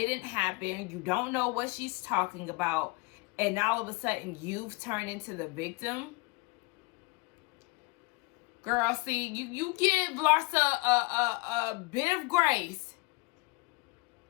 happen. You don't know what she's talking about. And now all of a sudden, you've turned into the victim. Girl, see, you give Larsa a bit of grace.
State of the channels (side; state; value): right; quieter; 25.8 dB